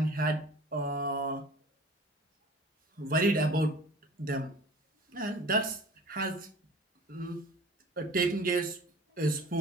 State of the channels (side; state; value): both; normal; correlation 0.44